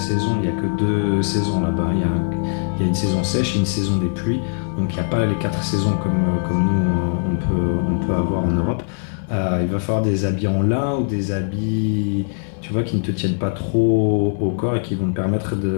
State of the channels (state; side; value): silent; right; digital silence